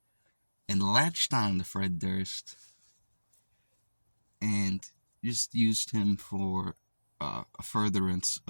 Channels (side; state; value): both; inverted; correlation -1.00